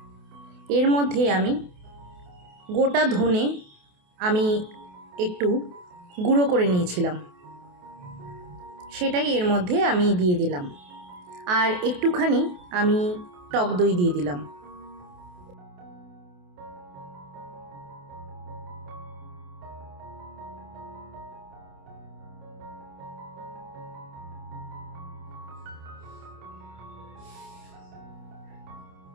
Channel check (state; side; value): late; left; 28 ms